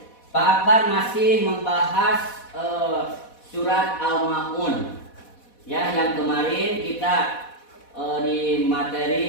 Pak Akbar masih membahas surat Al-Ma'un. Ya, yang kemarin kita di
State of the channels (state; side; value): late; right; 4.1 ms